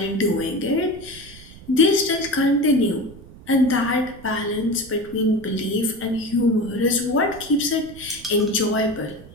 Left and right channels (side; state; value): right; noise; rumble, 19 dB below the sound